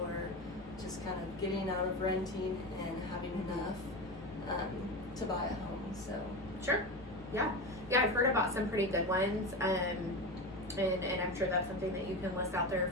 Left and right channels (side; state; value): both; normal; correlation 0.22